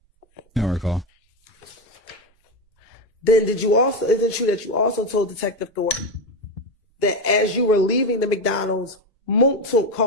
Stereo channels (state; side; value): normal; both; correlation 0.14